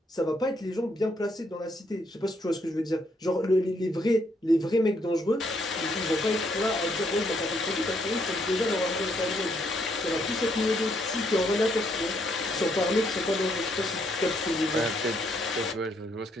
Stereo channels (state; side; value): normal; both; correlation 0.73